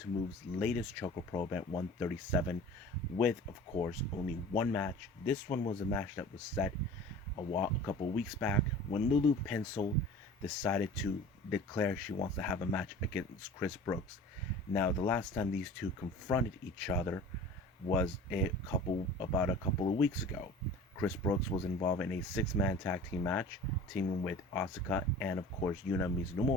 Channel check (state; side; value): normal; both; correlation 0.41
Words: Move's latest ChocoPro event 137 with, of course, only one match. This one was a match that was set a couple weeks back when Lulu Pencil decided to declare she wants to have a match against Chris Brooks. Now, the last time these two confronted each other was about a couple of weeks ago. Chris Brooks was involved in a six-man tag team match, teaming with Osaka and of course Yuna